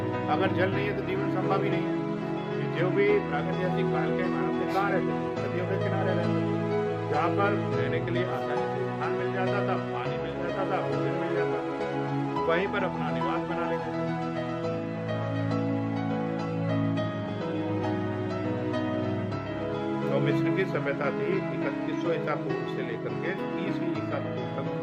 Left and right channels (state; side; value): identical; both; correlation 1.00